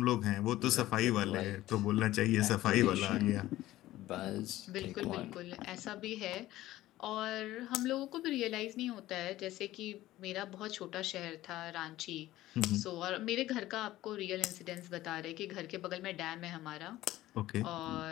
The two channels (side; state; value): right; quieter; 15.7 dB